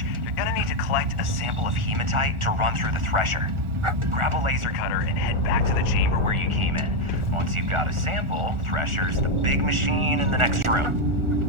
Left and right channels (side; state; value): left; late; 1.4 ms